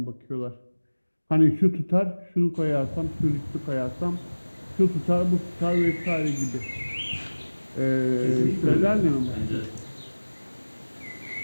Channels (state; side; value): inverted; both; correlation -1.00